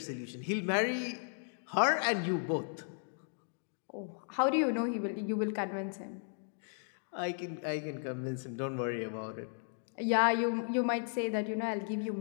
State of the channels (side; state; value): right; silent; digital silence